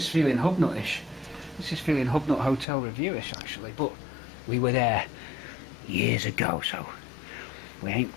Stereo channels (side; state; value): right; drops out; at 2.7 s